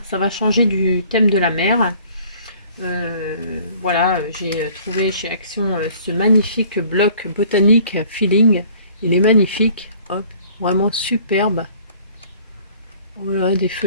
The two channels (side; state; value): both; inverted; correlation -0.54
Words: ça va changer du thème de la mer. Voilà, j'ai trouvé chez Action ce magnifique bloc botanique Feeling. Il est magnifique, hop, vraiment superbe. Voilà, des